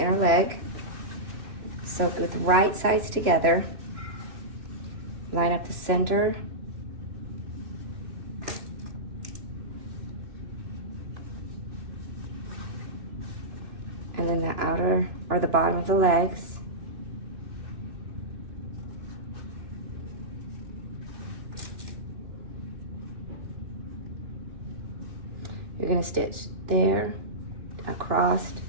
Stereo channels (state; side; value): late; left; 3.0 ms